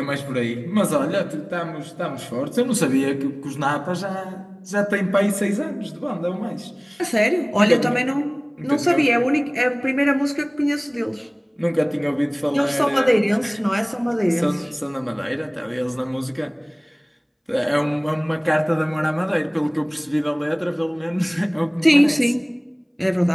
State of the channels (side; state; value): both; identical; correlation 1.00